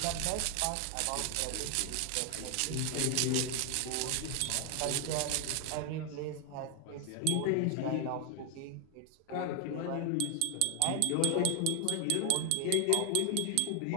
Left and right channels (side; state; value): both; different; correlation 0.00